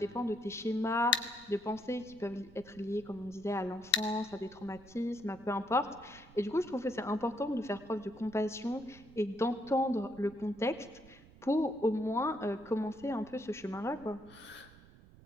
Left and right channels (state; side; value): noise; right; rumble, 22 dB below the sound